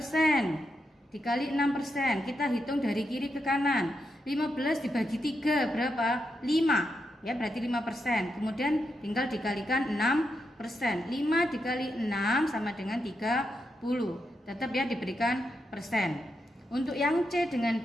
dikali 6%. Kita hitung dari kiri ke kanan. 15 dibagi 3 berapa? 5. Ya, berarti 5%. Kemudian tinggal dikalikan 6%. 5 dikali 6 sama dengan 30. Tetap ya diberikan persen. Untuk yang C dengan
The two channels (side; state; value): both; normal; correlation 0.84